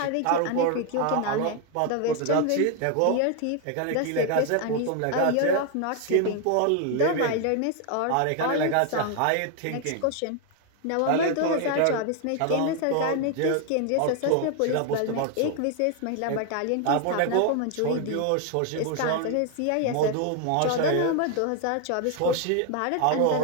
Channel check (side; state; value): both; different; correlation 0.01